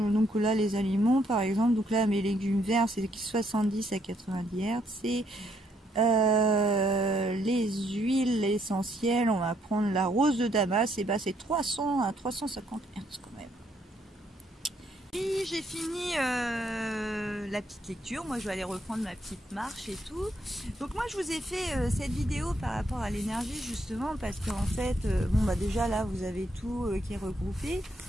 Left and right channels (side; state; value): both; normal; correlation 0.72